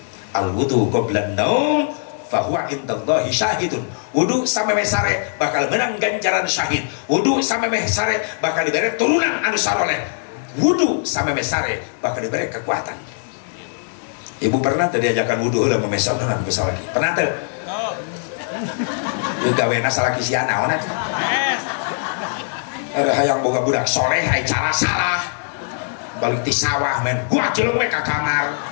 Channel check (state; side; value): silent; right; 65 dB below the other